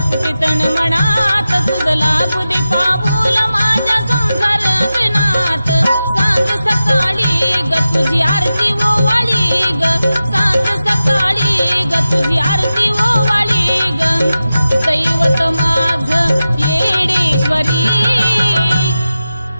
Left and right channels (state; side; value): inverted; both; correlation -0.93